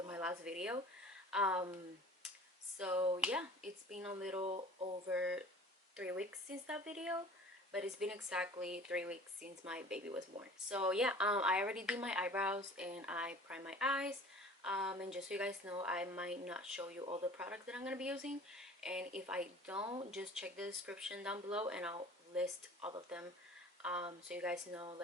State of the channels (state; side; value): normal; both; correlation 0.45